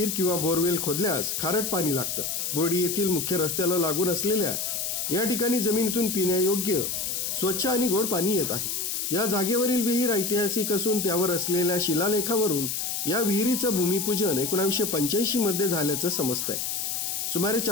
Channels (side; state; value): left; noise; hiss, 2 dB below the sound